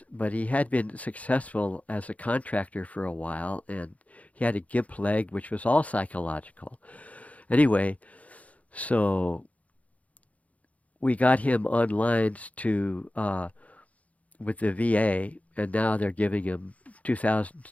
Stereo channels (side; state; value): right; late; 0.068 ms